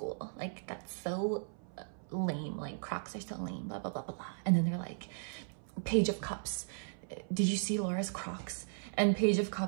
Like, that's so lame. Like, Crocs are so lame, blah, blah, blah, blah, blah. And then they're like, Page of Cups, did you see Laura's Crocs? And Page of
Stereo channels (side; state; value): left; silent; 53 dB below the other